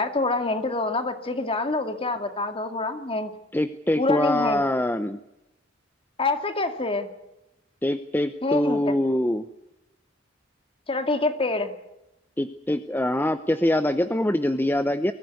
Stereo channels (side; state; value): both; normal; correlation 0.63